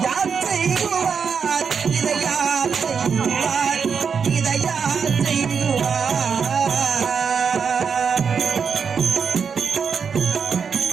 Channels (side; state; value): left; quieter; 6.3 dB